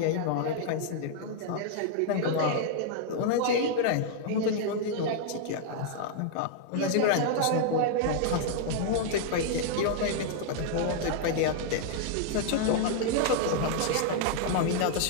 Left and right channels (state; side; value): different; both; correlation -0.01